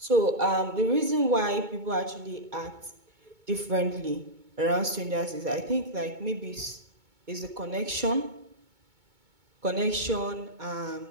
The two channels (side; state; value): left; late; 2.2 ms